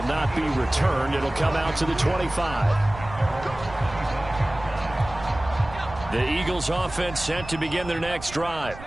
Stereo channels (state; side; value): noise; right; rumble, 14 dB below the sound